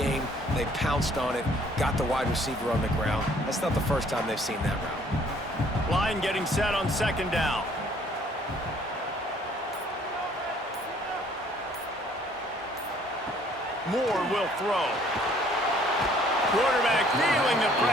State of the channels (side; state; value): both; normal; correlation 0.60